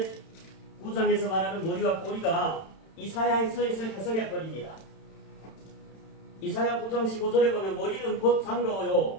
9장에서 말하는 머리와 꼬리가 이사야에서 해석해버립니다. 이사야 9장 15절에 보면 머리는 곧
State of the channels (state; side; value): late; right; 31 ms